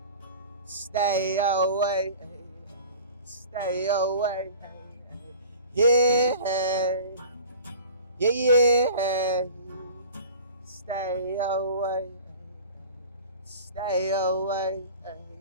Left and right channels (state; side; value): inverted; both; correlation -0.42